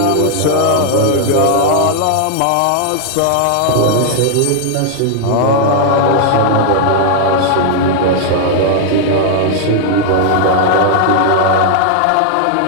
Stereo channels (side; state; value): both; different; correlation -0.01